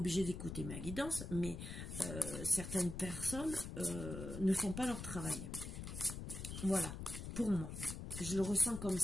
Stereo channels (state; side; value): noise; left; rumble, 7 dB below the sound